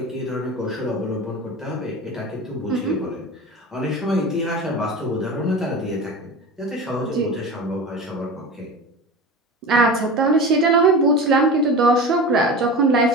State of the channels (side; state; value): both; normal; correlation 0.31